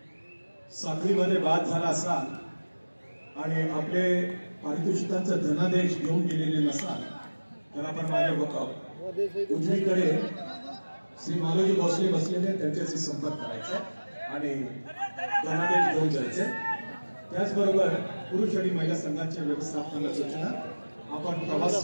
साखळीमध्ये बाद झाला असाल आणि आपले पारितोषिकांचा धनादेश घेऊन गेलेले नसाल तर आपण माझ्या उजवीकडे श्री मालोजी भोसले बसलेले त्यांच्याशी संपर्क करायचा आणि धनादेश घेऊन जायचे. त्याचबरोबर पुरुष आणि महिला संघाच्या व्यवस्थापनाला सूचना, आपण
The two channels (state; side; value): inverted; both; correlation -1.00